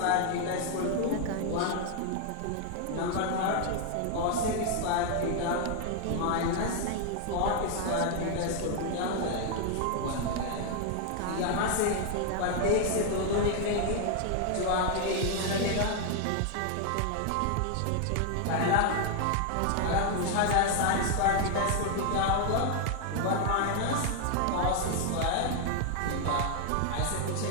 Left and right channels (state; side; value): different; both; correlation 0.00